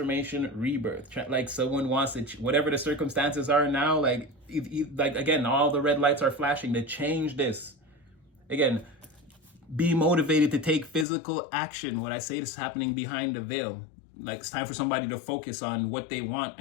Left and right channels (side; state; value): right; drops out; at 11.1 s